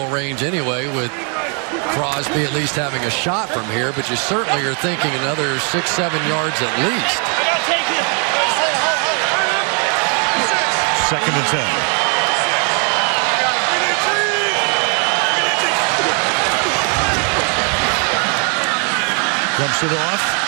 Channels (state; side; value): quieter; left; 38.6 dB